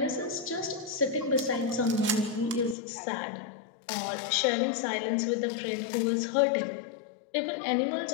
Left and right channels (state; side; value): drops out; right; at 2.8 s